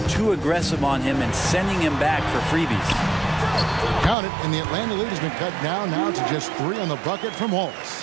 too aggressive on him and sending him back for freebies. Count it, and the Atlanta lead has been cut down now to just 3 on the bucket from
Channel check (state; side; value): drops out; left; at 4.2 s